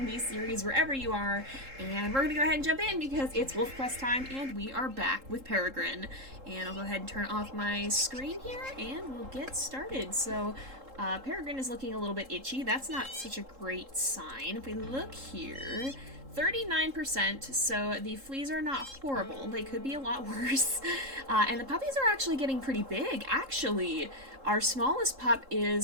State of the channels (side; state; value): left; late; 3.7 ms